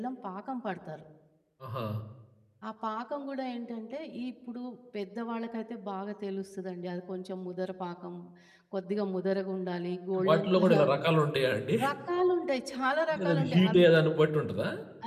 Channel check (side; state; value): both; identical; correlation 1.00